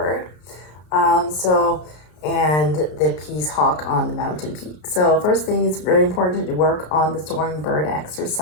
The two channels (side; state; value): right; late; 33 ms